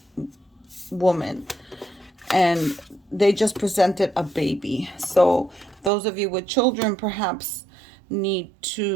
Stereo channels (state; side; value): drops out; left; at 5.9 s